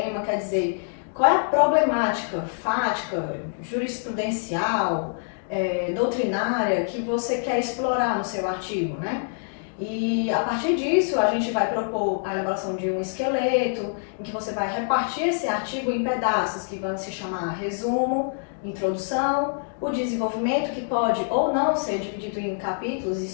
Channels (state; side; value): silent; right; digital silence